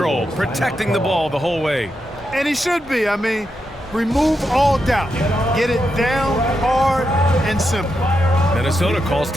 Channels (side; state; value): both; normal; correlation 0.85